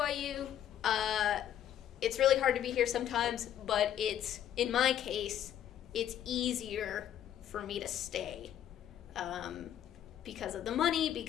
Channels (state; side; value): quieter; right; 10.7 dB